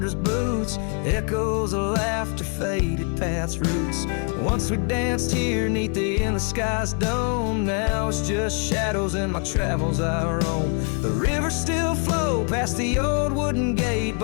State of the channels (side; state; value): right; quieter; 39.3 dB